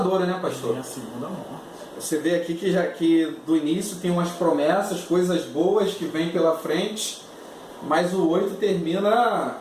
né, pastor? É a segunda morte. Você vê aqui que do início tem umas promessas, coisas boas que vêm pela frente, mas o 8 termina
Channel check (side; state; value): both; identical; correlation 1.00